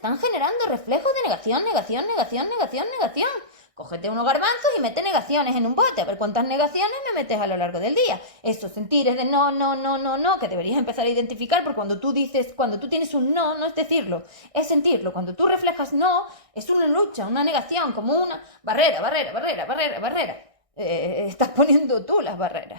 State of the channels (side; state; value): left; late; 1.6 ms